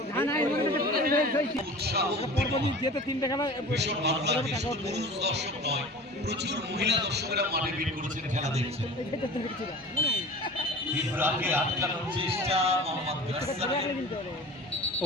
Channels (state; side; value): normal; both; correlation 0.38